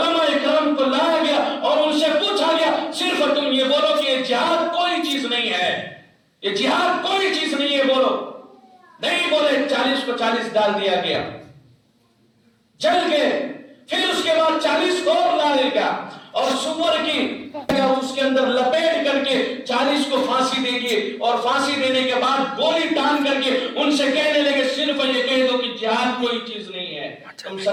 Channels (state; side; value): identical; both; correlation 1.00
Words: اکرام کو لایا گیا اور ان سے پوچھا گیا صرف تم یہ بولو کہ یہ جہاد کوئی چیز نہیں ہے، یہ جہاد کوئی چیز نہیں ہے، بولو. نہیں بولے، 40 کو 40 ڈال دیا گیا، جل گئے. پھر اس کے بعد 40 کو اور ڈالے گا اور سور کی اس کے اندر لپیٹ کر کے 40 کو پھانسی دے گی اور پھانسی دینے کے بعد گولی ٹان کر کے ان سے کہنے لگے صرف یہ کہہ دو کہ جہاد کوئی چیز نہیں ہے. تم